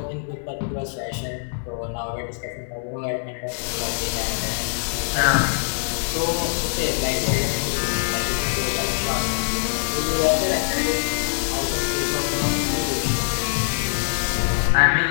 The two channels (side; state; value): right; silent; 63 dB below the other